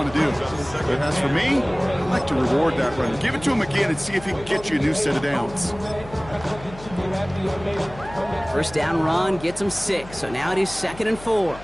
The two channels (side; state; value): left; noise; hum, 16 dB below the sound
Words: to do. But as for me, I like to reward that run. Give it to him again and see if he can get you a new set of downs. First down run gets him 6. So now it is 2nd and 4.